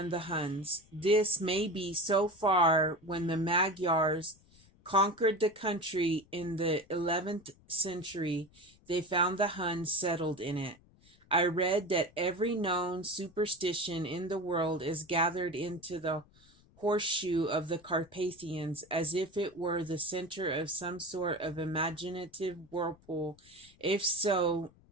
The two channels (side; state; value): left; noise; rumble, 28 dB below the sound